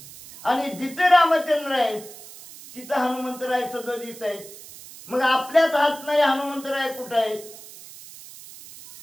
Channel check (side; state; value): right; noise; hiss, 17 dB below the sound